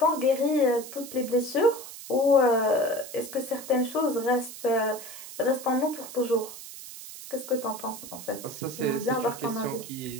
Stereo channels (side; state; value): right; noise; hiss, 13 dB below the sound